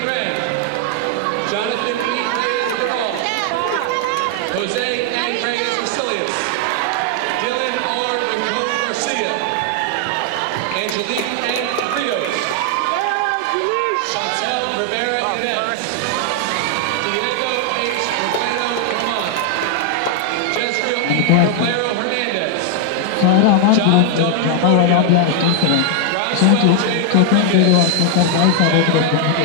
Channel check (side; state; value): both; different; correlation 0.00